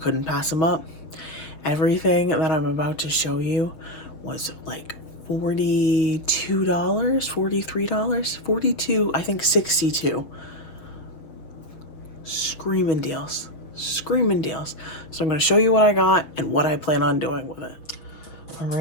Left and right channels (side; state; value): right; late; 6.1 ms